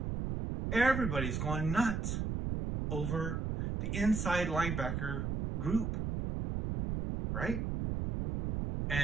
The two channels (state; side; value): noise; right; rumble, 2 dB below the sound